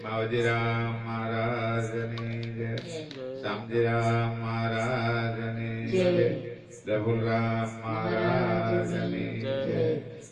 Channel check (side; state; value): both; identical; correlation 1.00